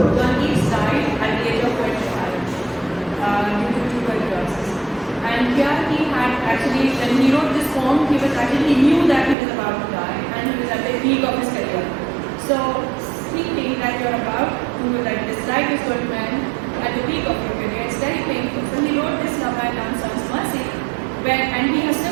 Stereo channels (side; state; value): left; drops out; at 9.3 s